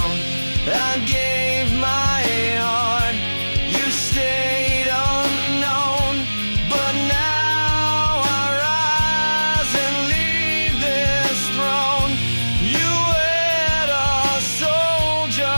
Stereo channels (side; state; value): both; inverted; correlation -1.00